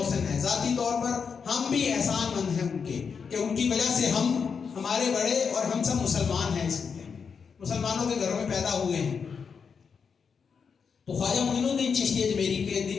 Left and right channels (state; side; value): quieter; right; 6.0 dB